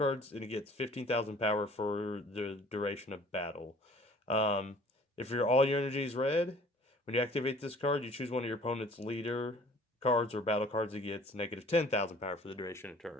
and it gets 15,000 power for the duration of battle. If all your energy is red, when you activate this card, you choose one of your opponent's leader cards or battle cards, it gets negative 10,000 power for the duration of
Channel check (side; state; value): both; normal; correlation 0.51